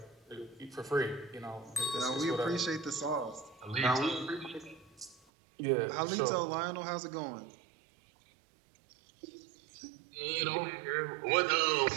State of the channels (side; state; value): left; drops out; at 5.2 s